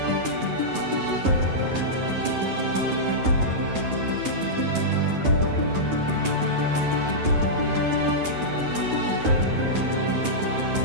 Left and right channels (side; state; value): left; late; 9.9 ms